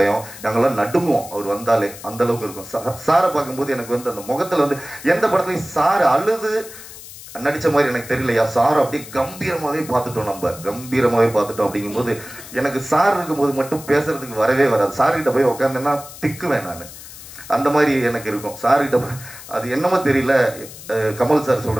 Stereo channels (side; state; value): left; noise; hiss, 15 dB below the sound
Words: நாங்கள்லாம் நடுங்குவோம் அவர் வந்தாலே, அந்த அளவுக்கு இருக்கும். சாரை பார்க்கும்போது எனக்கு அந்த முகத்தில் எந்த படத்துலையும் சார் அழுது நடித்த மாதிரி எனக்கு தெரியலையா, சார் அப்படியே கம்பீரமாகவே பார்த்துட்டோம், நம்ம கம்பீரமாகவே பார்த்துட்டோம். அப்படிங்கும்போது எனக்கு சார் இருக்கும்போது மட்டும் பேசுறதுக்கு வரவே வராது. சார்கிட்ட போய் உட்காந்தேன்னா திக்குவேன் நான். அந்த மாதிரி எனக்கு இருக்கும். சார்கிட்ட அது என்னமோ தெரியல, கமல் சார்